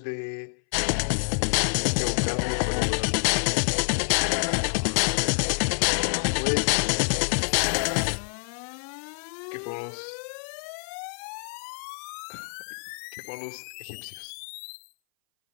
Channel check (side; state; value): right; silent; 59 dB below the other